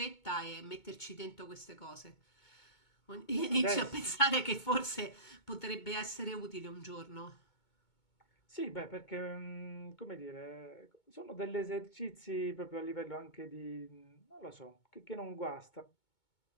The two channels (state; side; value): late; right; 2.2 ms